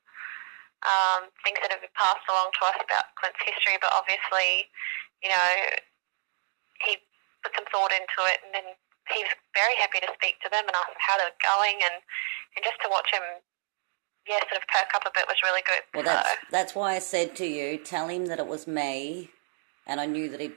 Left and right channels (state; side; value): silent; left; digital silence